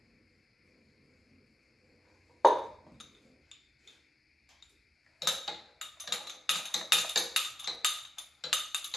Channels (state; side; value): normal; both; correlation 0.86